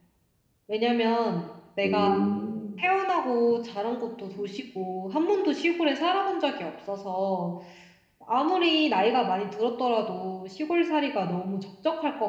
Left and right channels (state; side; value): identical; both; correlation 1.00